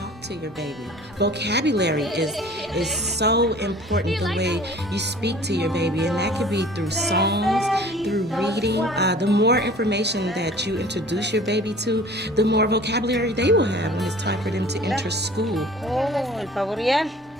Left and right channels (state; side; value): normal; both; correlation 0.47